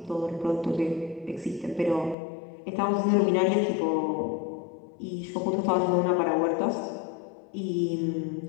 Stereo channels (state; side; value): drops out; right; at 2.1 s